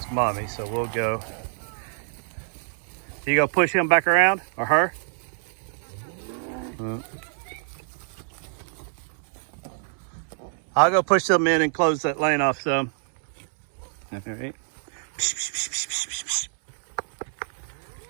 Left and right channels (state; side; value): silent; left; 61 dB below the other